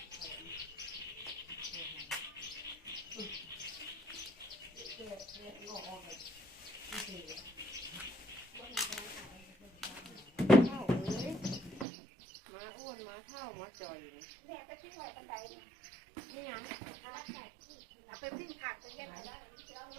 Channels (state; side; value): drops out; left; at 11.9 s